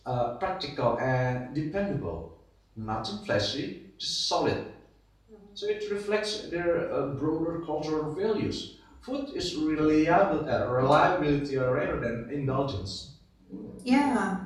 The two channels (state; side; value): identical; both; correlation 1.00